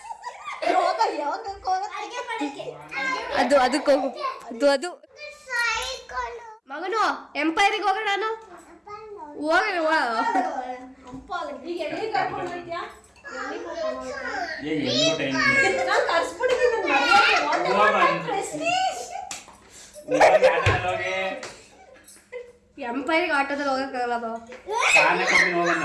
ಅದಕ್ಕೆ ಹೋಗು. ಅದು ಮಗನು ಎಂಪೈರಿಗೆ ಹೋಗೋಣ. ನಾನು ಎಂಪೈರಿಗೆ ಆಟೋದಲ್ಲಿ ಹೋಗಕ್ಕಾಗಲ್ಲ.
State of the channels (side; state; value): both; identical; correlation 1.00